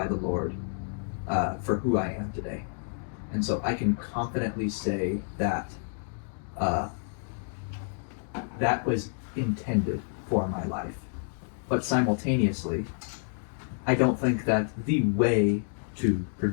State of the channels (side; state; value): right; silent; digital silence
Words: the Lord for who I am today. And so I can confidently say that that was intended for my life. But simultaneously, I don't think that the way to